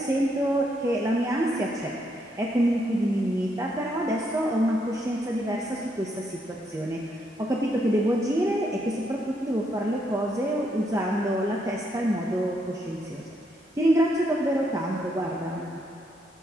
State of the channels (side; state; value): both; normal; correlation 0.76